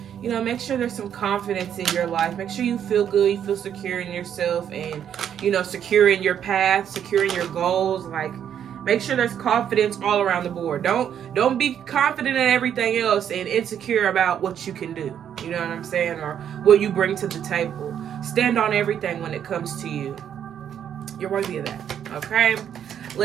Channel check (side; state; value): left; quieter; 9.2 dB